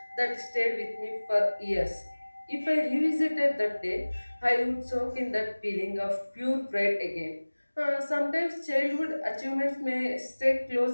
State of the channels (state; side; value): inverted; both; correlation -1.00